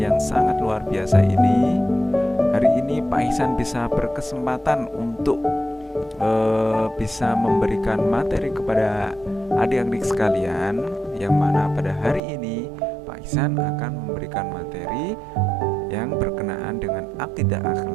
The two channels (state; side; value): drops out; left; at 12.2 s